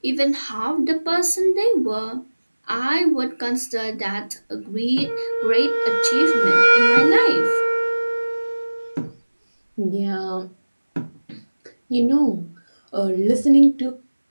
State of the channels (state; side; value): inverted; both; correlation -1.00